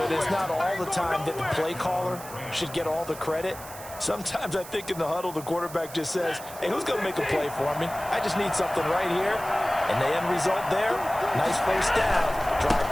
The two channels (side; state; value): right; noise; hiss, 15 dB below the sound